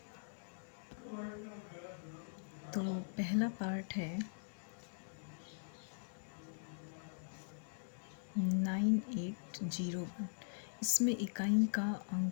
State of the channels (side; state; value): right; silent; digital silence